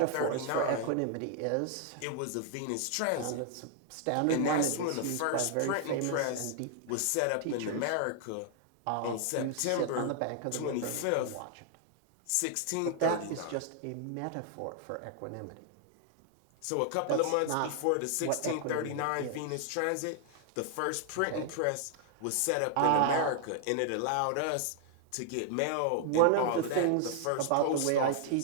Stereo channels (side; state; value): both; different; correlation 0.00